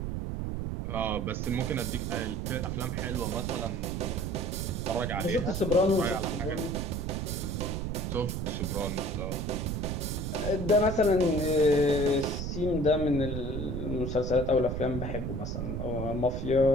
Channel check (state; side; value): noise; right; rumble, 3 dB below the sound